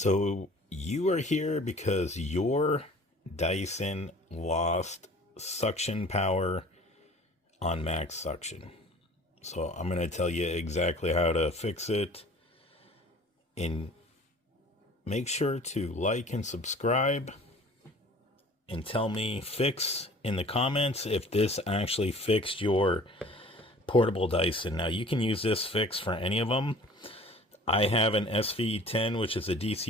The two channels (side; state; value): both; normal; correlation 0.48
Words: you are here because your Dyson lost suction power on max suction. So I'm going to tell you exactly how to fix it. And make sure to like and subscribe and tell me fix in the comments if this actually fixed your portable Dyson. Now you can use this fix for any of them. I have an SV10, which is a